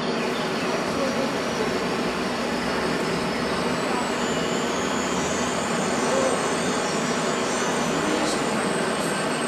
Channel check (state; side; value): identical; both; correlation 1.00